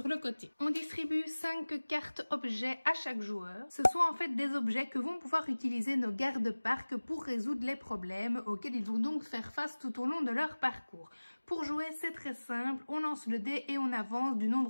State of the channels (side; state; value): both; inverted; correlation -1.00